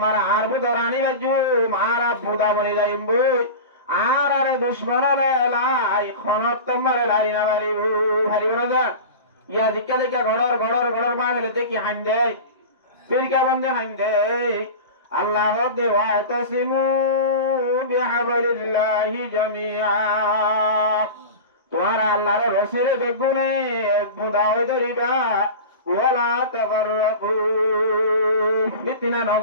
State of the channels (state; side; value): inverted; both; correlation -0.30